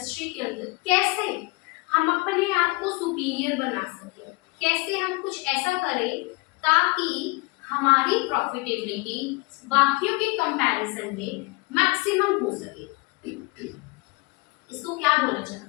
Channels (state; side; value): quieter; right; 25.9 dB